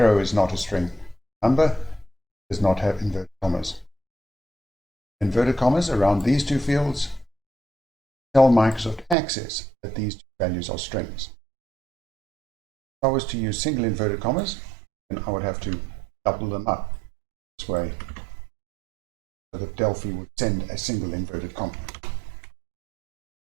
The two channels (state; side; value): drops out; left; at 9.2 s